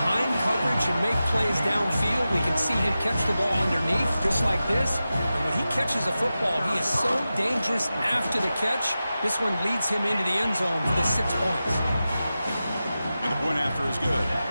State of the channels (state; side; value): inverted; both; correlation -0.93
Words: coverage and make plays downfield. We can see him catch the ball underneath, just like this. And when he catches a football, he is so dangerous after the catch. This one leads him into the end zone for the 6 points. And the point after is good.